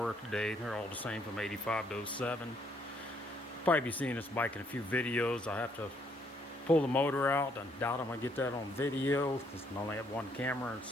today. They're all the same from 85 to 07. Probably be seeing this bike in a few videos. I have to pull the motor out. I doubt I'm going to get that on video because I only have one camera and it's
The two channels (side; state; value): both; normal; correlation 0.70